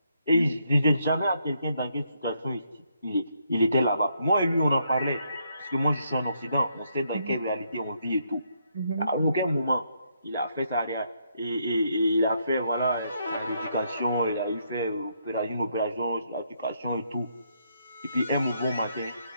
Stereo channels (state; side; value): inverted; both; correlation -0.75